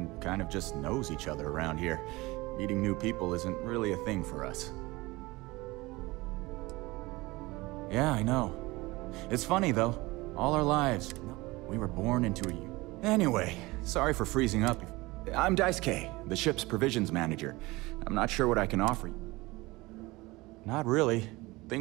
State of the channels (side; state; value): left; quieter; 21.6 dB